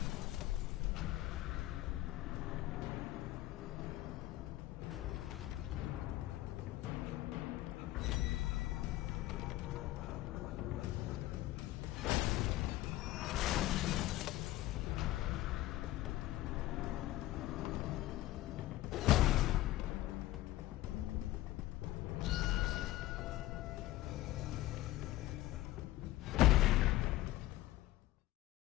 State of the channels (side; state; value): right; quieter; 16.1 dB